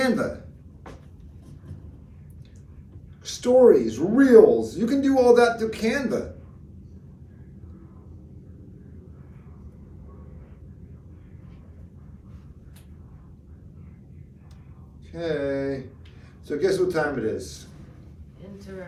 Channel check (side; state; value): both; identical; correlation 1.00